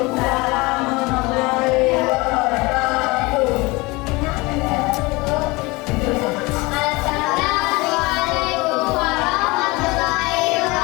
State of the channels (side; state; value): right; quieter; 23.8 dB